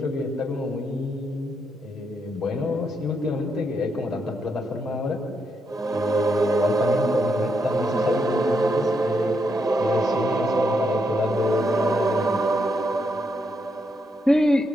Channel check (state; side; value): normal; both; correlation 0.79